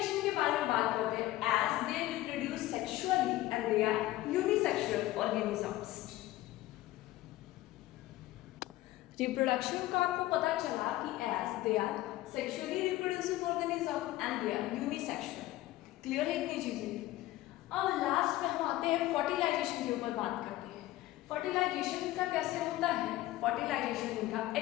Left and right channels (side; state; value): right; quieter; 16.2 dB